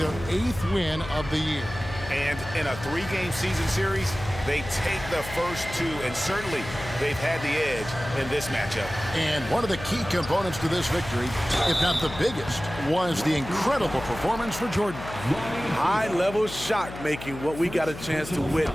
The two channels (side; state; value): left; noise; hum, 12 dB below the sound